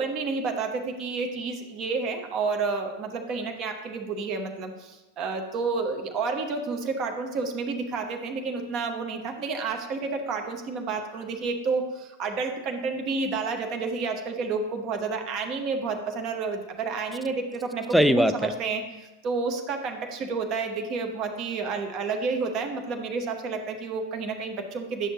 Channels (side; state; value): left; quieter; 3.1 dB